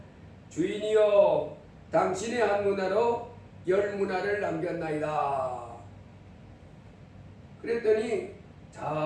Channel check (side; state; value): both; identical; correlation 1.00